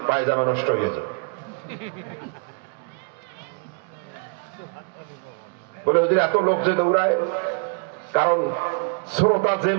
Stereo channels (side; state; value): left; quieter; 37.3 dB